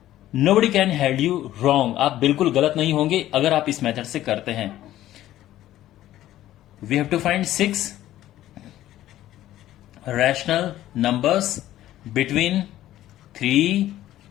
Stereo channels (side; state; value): right; quieter; 13.8 dB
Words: nobody can hold you wrong. आप बिल्कुल गलत नहीं होंगे अगर आप इस method से करते हैं. We have to find 6 rational numbers between 3